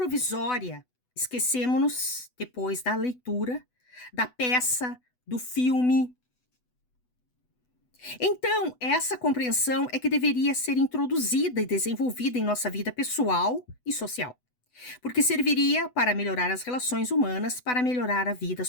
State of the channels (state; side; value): late; right; 8.0 ms